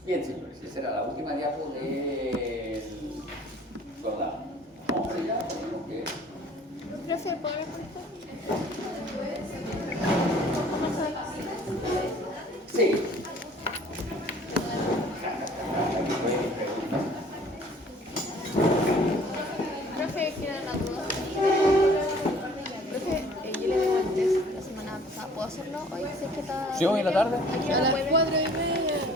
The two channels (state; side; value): normal; both; correlation 0.53